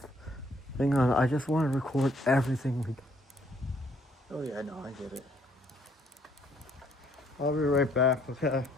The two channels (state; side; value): normal; both; correlation 0.66